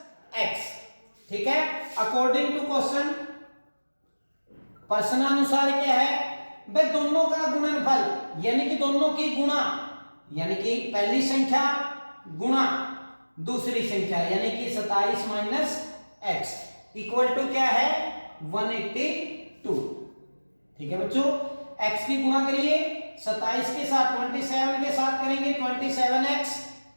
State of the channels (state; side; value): inverted; both; correlation -1.00